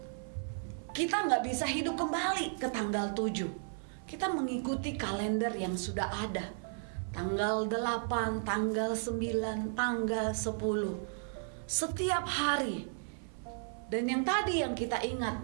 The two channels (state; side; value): silent; left; 55 dB below the other